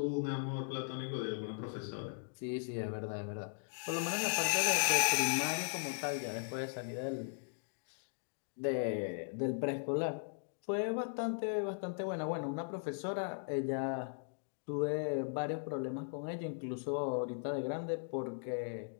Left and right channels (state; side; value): silent; right; digital silence